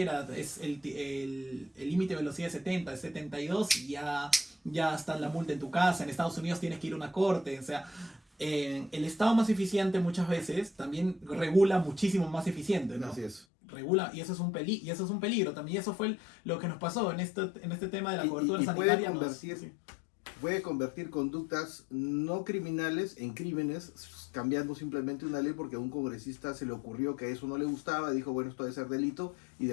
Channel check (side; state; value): right; drops out; at 13.5 s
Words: es el límite de velocidad es 70, es 72 y ya está la multa en tu casa. En Estados Unidos tienes que ir a una corte, o sea, el Estado más eficiente muchas veces también regula muchísimo más eficiente, ¿no? Así es. Regula, y eso es un y eso es un peligro también. Y eso fue lo que nos pasó en este tema de la cobertura Y sanitaria. puede convertir conductas no criminales en crímenes, cambiando simplemente una ley porque a un congresista se le ocurrió que eso no le gustaba, dijo, bueno, esto debe ser delito, y